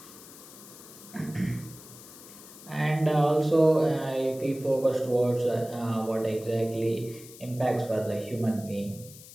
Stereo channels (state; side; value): noise; left; hiss, 18 dB below the sound